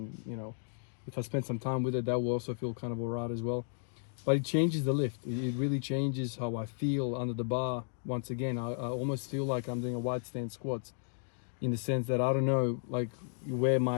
you know, if I spend some time with it, that will also feel kind of alright as well. But it changes the lift. It really changes how I feel under the bar. Once again, I almost feel like I'm doing a wide stance squats, in the sense that I don't know, like, where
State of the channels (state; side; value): silent; right; digital silence